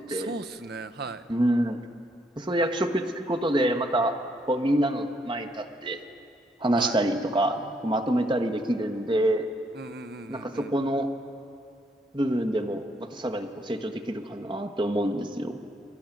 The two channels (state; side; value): normal; both; correlation 0.72